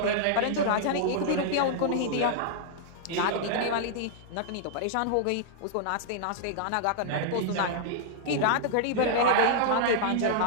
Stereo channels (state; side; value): different; both; correlation -0.01